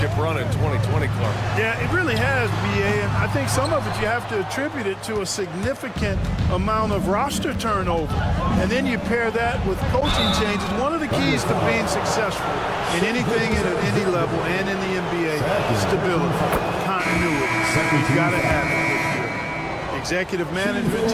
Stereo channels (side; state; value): both; identical; correlation 1.00